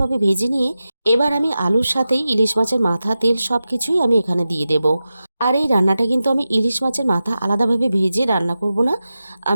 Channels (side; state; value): both; inverted; correlation -0.93